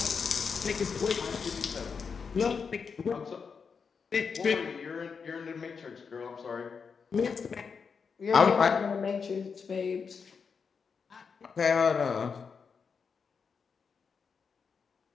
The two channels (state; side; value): quieter; right; 5.8 dB